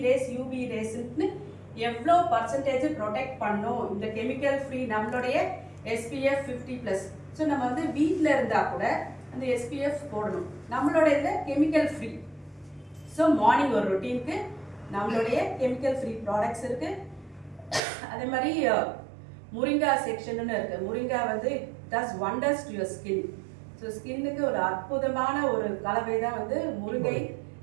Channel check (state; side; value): drops out; left; at 17.8 s